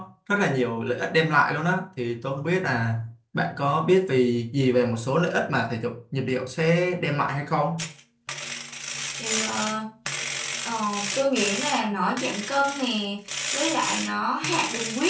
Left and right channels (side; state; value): both; identical; correlation 1.00